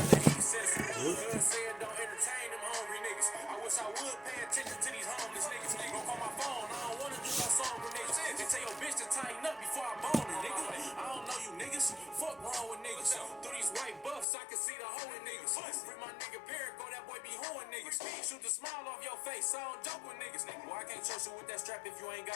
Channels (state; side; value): drops out; right; at 14.2 s